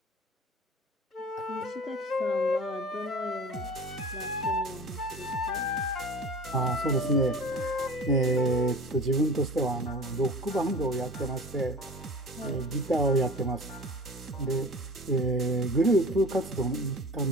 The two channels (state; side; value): normal; both; correlation 0.39